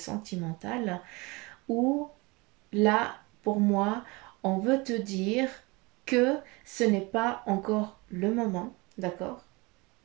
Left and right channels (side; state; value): left; quieter; 25.6 dB